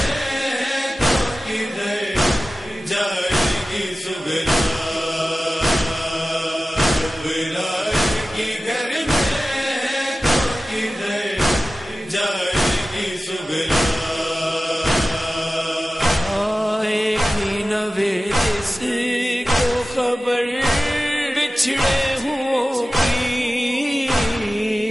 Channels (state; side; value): normal; both; correlation 0.96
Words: بچھڑے ہوں کی